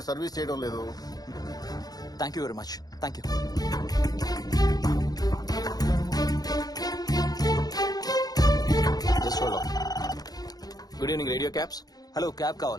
సర్వీస్ చేయడం లేదు. Thank you very much. Thank you. Good evening radio cabs. Hello, cab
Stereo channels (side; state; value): right; late; 0.19 ms